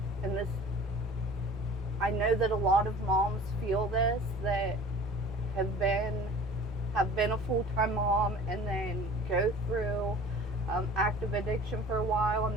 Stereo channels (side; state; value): both; normal; correlation 0.44